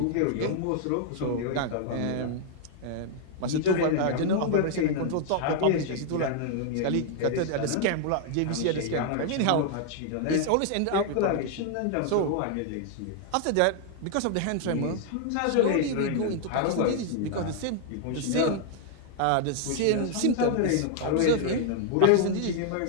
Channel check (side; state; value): both; different; correlation 0.00